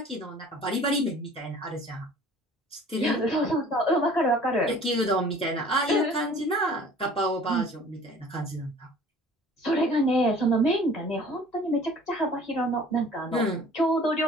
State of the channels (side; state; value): both; normal; correlation 0.49